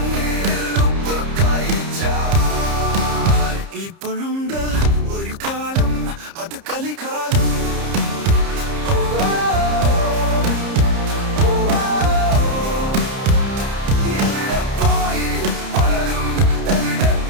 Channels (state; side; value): late; left; 30 ms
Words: ഉപ്പ് കഴിച്ചാൽ ഇപ്പോഴുണ്ട് ഒരു കാലം അത് കലികാലം